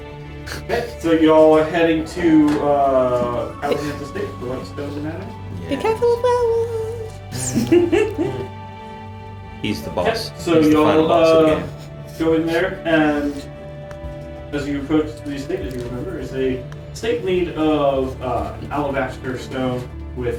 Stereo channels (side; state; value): both; identical; correlation 1.00